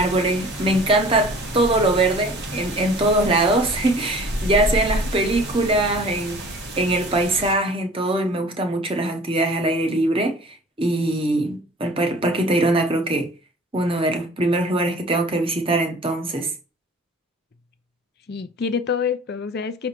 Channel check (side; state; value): both; normal; correlation 0.47